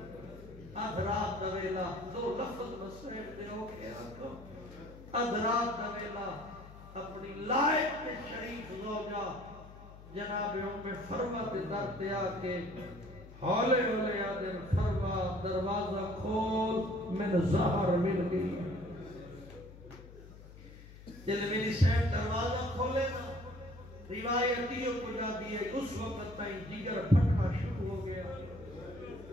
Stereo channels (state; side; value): noise; left; hum, 17 dB below the sound